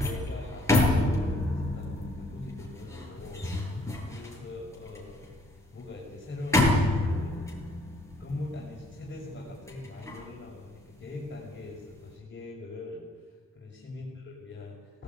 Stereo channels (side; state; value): both; normal; correlation 0.63